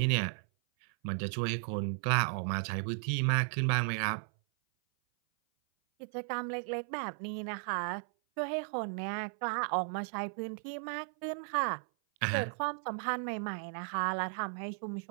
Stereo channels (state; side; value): silent; left; 54 dB below the other